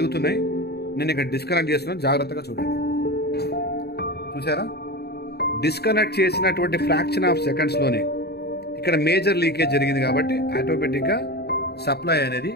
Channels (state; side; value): late; right; 0.47 ms